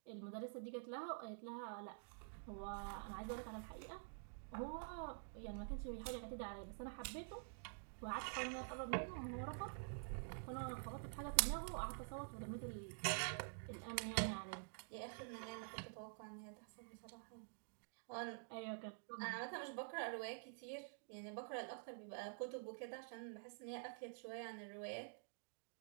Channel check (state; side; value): silent; left; digital silence